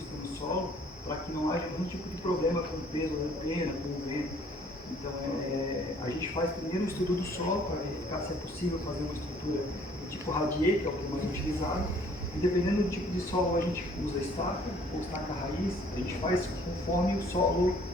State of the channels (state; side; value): normal; both; correlation 0.58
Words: no solo para que não haja nenhum tipo de problema com o peso da antena, com o vento. Então a gente faz primeiro o estudo do solo para verificar se é possível fazer uma estrutura do tipo radier, que é o que é mais utilizado. E dependendo do tipo de solo, a gente usa estaca ou estaca raiz. A gente faz conforme o solo,